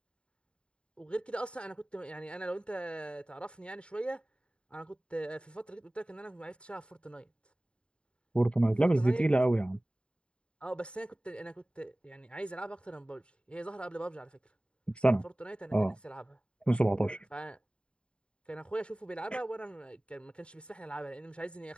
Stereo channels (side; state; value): right; late; 0.054 ms